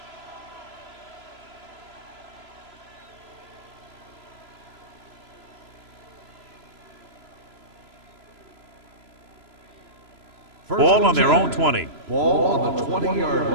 Ball on their own 20. Ball on the 20-yard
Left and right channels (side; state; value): left; late; 3.0 ms